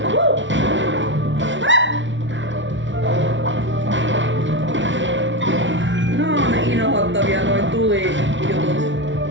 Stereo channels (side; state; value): left; late; 0.55 ms